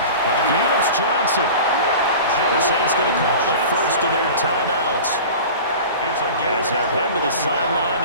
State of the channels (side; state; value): both; inverted; correlation -0.36